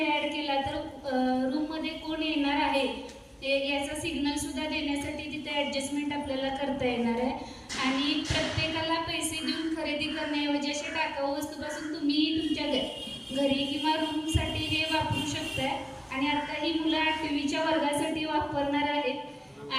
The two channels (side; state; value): both; identical; correlation 1.00